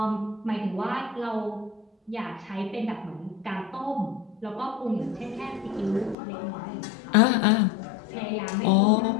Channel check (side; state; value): right; drops out; at 6.2 s